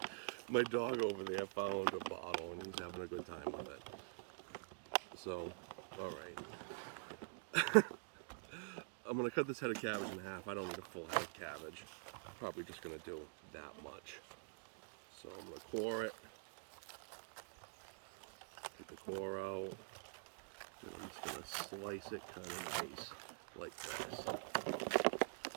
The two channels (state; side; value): silent; left; digital silence